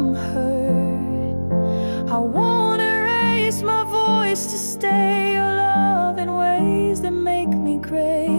hurt. I won't erase my voice to stay or love in ways that make me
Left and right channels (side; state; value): both; inverted; correlation -1.00